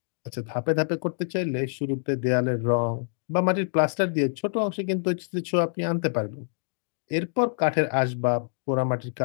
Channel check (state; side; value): silent; right; digital silence